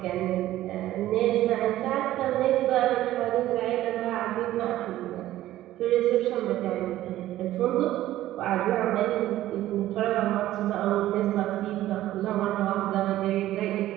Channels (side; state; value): left; quieter; 14.4 dB